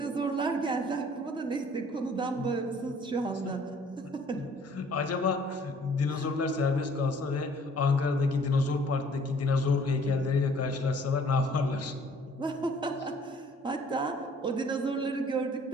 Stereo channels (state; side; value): normal; both; correlation 0.56